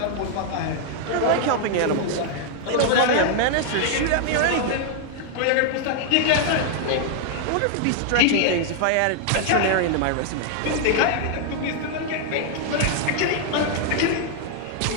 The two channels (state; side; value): different; both; correlation 0.00